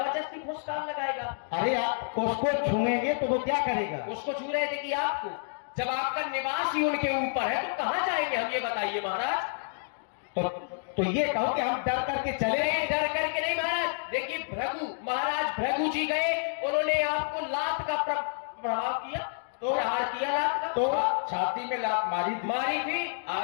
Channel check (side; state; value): right; silent; digital silence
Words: फुसकार लगाएगा। अरे आप उसको छूएंगे तो वो क्या करेगा? उसको छू रहे थे कि आपको? जब आपका निवास ही उनके ऊपर है तो कहां जाएंगे हम, ये बताइए महाराज। तो ये कहो कि हम डर करके चले? नहीं, डर करके नहीं महाराज। देखिए भृगु, महाराज भृगु जी गए, उन्होंने आपको लात का प्रभाव किया, तो प्रहार किया लात का। तो छाती में लात मारी थी।